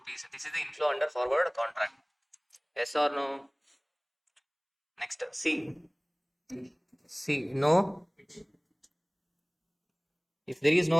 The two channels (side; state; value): both; identical; correlation 1.00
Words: This is the inflow under forward contract. Yes or no? Next, C. No. If there is